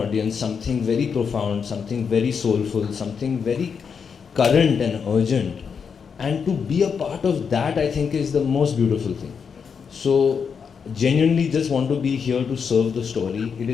something very profound, something very soulful, something very current and urgent. And to be a part of that, I think, is the most beautiful thing. So, genuinely just want to be here to serve the story. It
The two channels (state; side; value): quieter; right; 6.3 dB